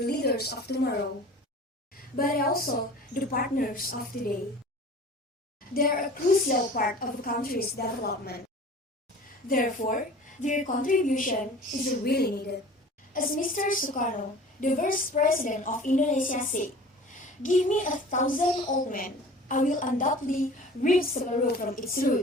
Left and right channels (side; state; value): both; normal; correlation 0.42